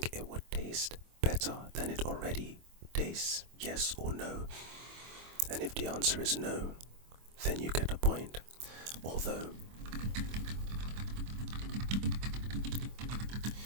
it would taste better than it already tastes? Yes or no? And if the answer is no, then you get a point. Although,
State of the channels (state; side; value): late; left; 25 ms